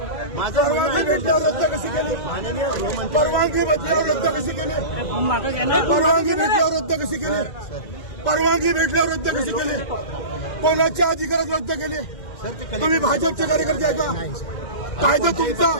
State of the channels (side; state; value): right; late; 2.0 ms